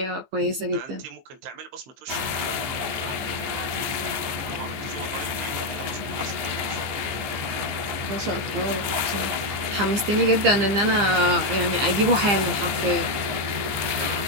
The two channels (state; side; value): late; left; 15 ms